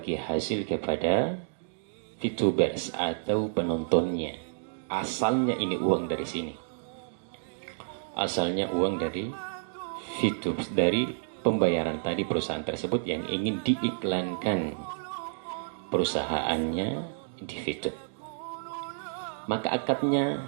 hasil kepada VTubers atau penontonnya. Asalnya ini uang dari sini. Asalnya uang dari VTube, dari pembayaran tadi perusahaan tersebut yang ingin diiklankan perusahaannya di VTube. Maka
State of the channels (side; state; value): left; silent; digital silence